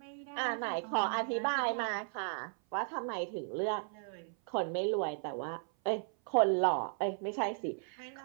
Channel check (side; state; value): left; silent; 54 dB below the other